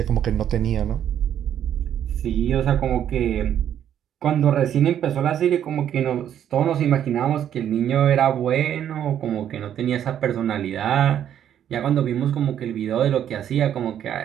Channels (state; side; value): quieter; left; 10.1 dB